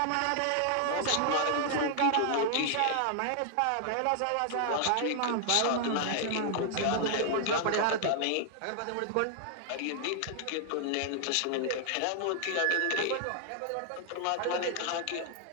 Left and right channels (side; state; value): both; different; correlation 0.00